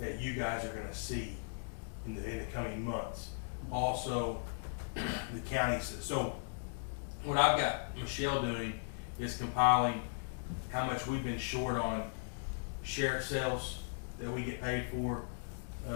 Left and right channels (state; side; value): silent; right; digital silence